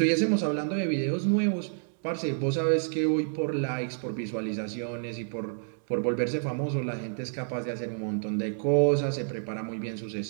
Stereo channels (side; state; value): left; silent; digital silence